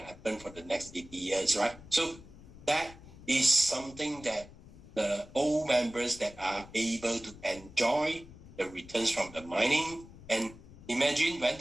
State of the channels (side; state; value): left; noise; rumble, 19 dB below the sound